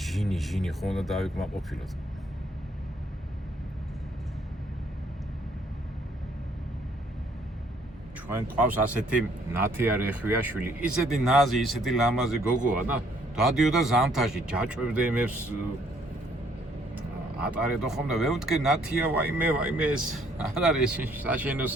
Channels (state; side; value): normal; both; correlation 0.65